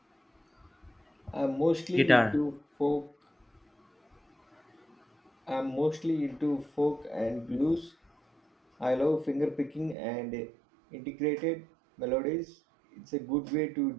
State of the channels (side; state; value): left; drops out; at 10.0 s